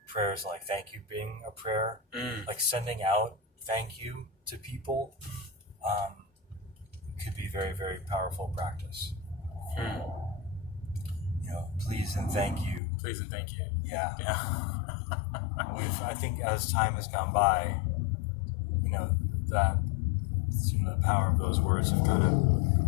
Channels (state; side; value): drops out; right; at 12.8 s